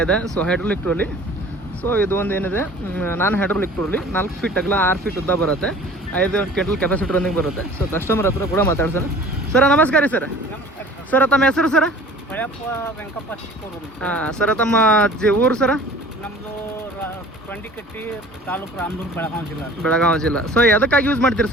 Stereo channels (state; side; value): normal; both; correlation 0.46